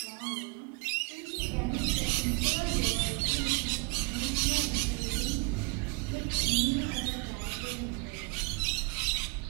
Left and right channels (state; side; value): quieter; left; 30.7 dB